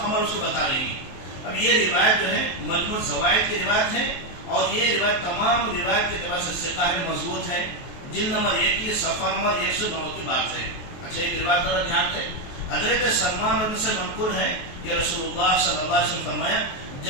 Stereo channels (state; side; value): late; right; 23 ms